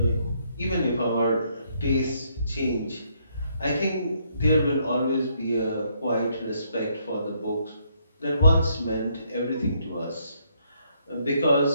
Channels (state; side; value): inverted; both; correlation -0.72